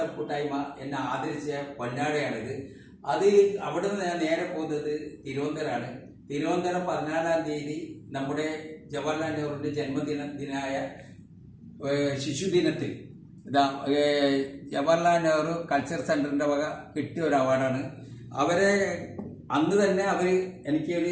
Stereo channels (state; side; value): identical; both; correlation 1.00